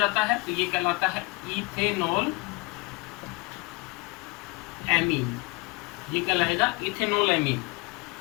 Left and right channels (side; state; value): right; quieter; 24.9 dB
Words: है, तो ये कहलाता है इथेनॉल एमीन, ये कहलाएगा इथेनॉल एमीन।